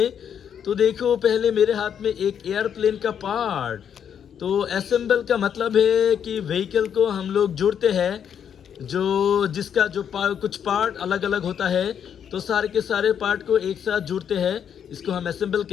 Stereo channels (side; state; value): right; quieter; 8.4 dB